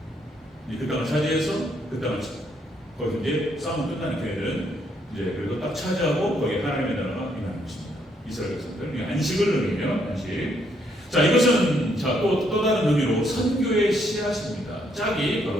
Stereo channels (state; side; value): normal; both; correlation 0.72